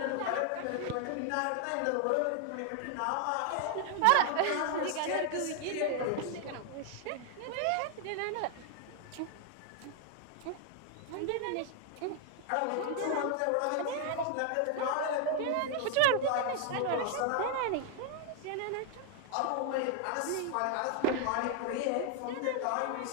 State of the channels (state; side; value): different; both; correlation 0.00